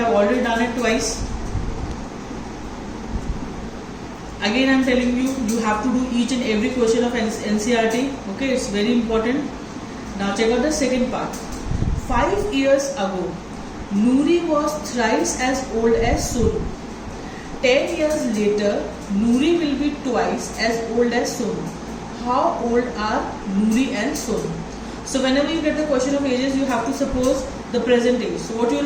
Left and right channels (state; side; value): identical; both; correlation 1.00